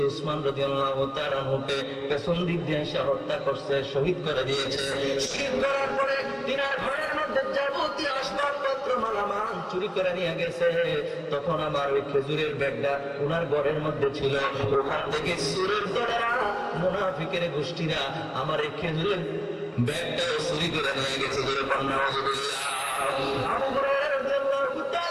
উসমান রাদিয়াল্লাহু তাআলা আনহুকে পেছন দিক দিয়ে এসে হত্যা করছে, শহীদ করে দিয়েছে। শহীদ করার পরে তিনার ঘরের মধ্যে যাবতীয় আসবাবপত্র মালামাল চুরি করে নিয়ে গেছে। তখন আমার ওই খেজুরের ব্যাগটা ওনার ঘরের মধ্যে ছিল। ওখান থেকে সুরের দলেরা, মুনাফিকের গোষ্ঠীরা আমার এই খেজুরের ব্যাগটাও চুরি করে নিয়ে গেছে। আবু হুরায়রা রাদিয়াল্লাহু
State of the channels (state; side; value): identical; both; correlation 1.00